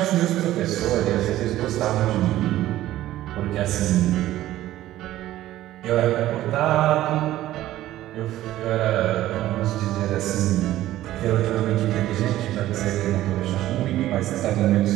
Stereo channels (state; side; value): quieter; left; 14.4 dB